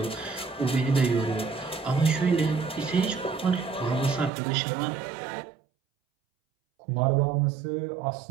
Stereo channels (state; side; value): drops out; left; at 4.3 s